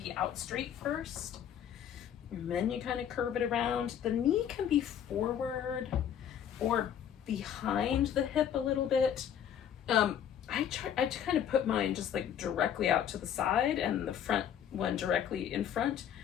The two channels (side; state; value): right; quieter; 9.3 dB